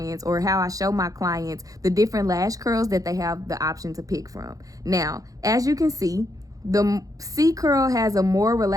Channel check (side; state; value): left; late; 0.17 ms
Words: or how I show my clients the different lash curls that they have the option to pick from. Now, as you can see, the C curl has a more